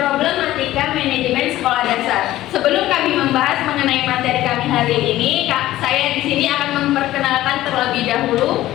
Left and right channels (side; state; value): right; quieter; 15.1 dB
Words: manajemen sekolah dasar. Sebelum kami membahas mengenai materi kami hari ini, saya di sini akan memperkenalkan terlebih dahulu